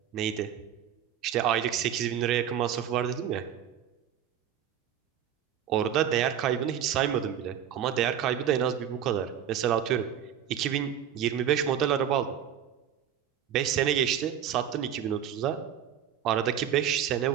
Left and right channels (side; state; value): left; quieter; 9.5 dB